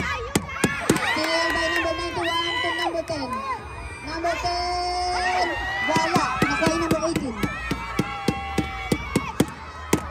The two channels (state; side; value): identical; both; correlation 1.00